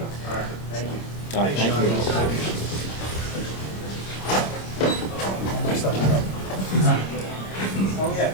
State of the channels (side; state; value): right; late; 26 ms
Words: All right, thank you. All right, thank you.